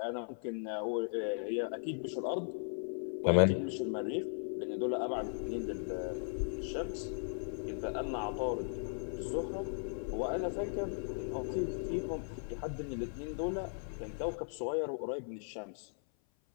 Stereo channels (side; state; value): right; silent; 53 dB below the other